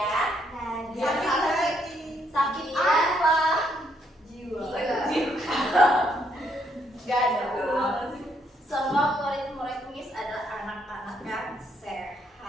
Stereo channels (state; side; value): normal; both; correlation 0.72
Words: Sakit apa? Jiwa. Gak ada. Semua murid-murid Miss adalah anak-anak yang sehat.